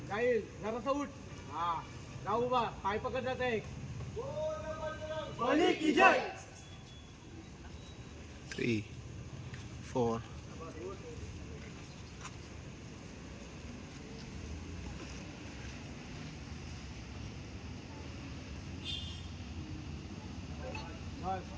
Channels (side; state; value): both; identical; correlation 1.00